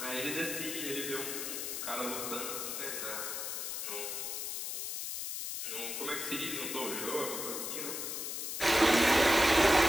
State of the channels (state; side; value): noise; left; hiss, 4 dB below the sound